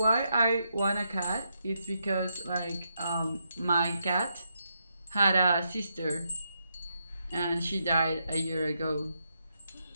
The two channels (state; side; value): inverted; both; correlation -0.81